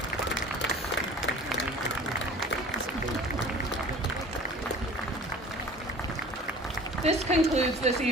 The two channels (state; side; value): normal; both; correlation 0.43